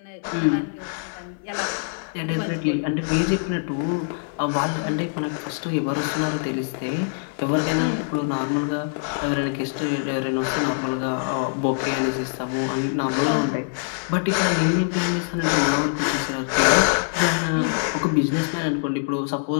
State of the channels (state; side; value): silent; right; 61 dB below the other